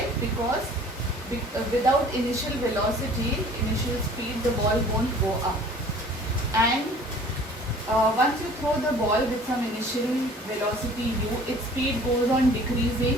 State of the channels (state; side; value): normal; both; correlation 0.49